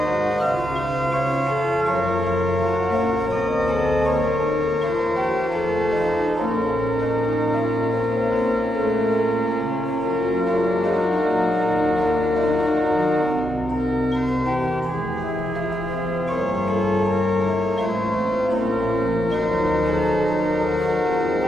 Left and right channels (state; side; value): normal; both; correlation 0.82